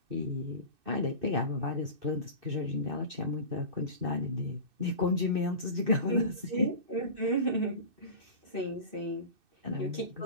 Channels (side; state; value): left; late; 2.6 ms